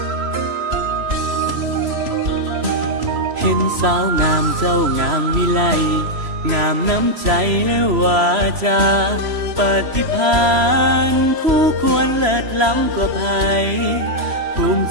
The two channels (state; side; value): late; left; 3.0 ms